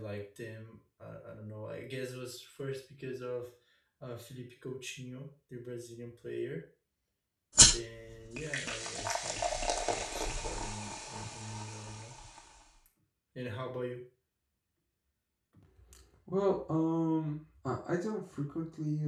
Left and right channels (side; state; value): both; identical; correlation 1.00